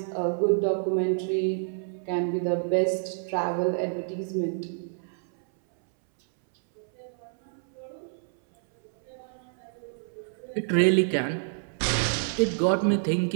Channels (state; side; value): silent; left; 60 dB below the other